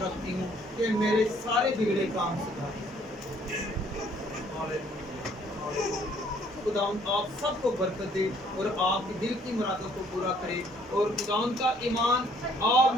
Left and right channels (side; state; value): both; normal; correlation 0.62